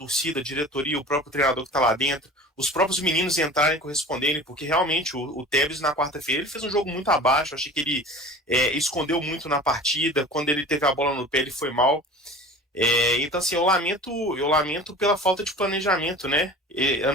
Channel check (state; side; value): normal; both; correlation 0.39